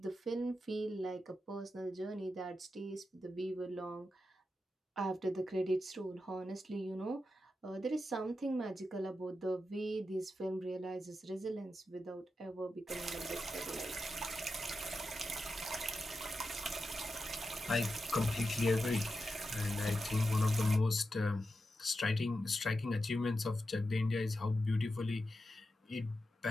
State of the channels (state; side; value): normal; both; correlation 0.89